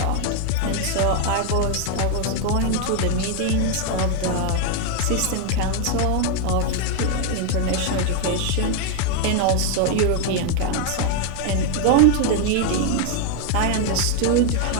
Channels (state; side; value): different; both; correlation 0.01